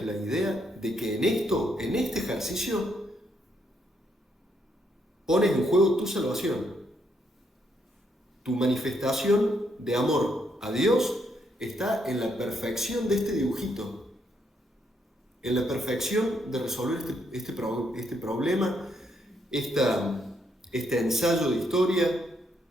la idea de que en este ejercicio, pones en juego tu salvación. Tu manifestación de amor a Dios está en la perfección de este dibujito, en la perfección de resolver este problema, este ensayo de historia.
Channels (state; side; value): normal; both; correlation 0.75